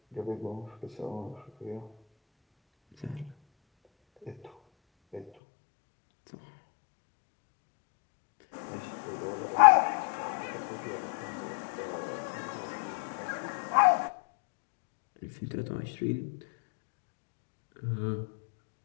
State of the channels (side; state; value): right; drops out; at 5.3 s